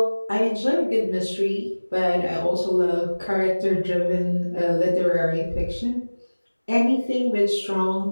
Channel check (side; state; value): both; inverted; correlation -1.00